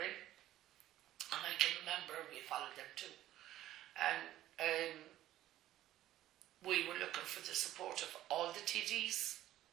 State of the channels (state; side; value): quieter; left; 13.8 dB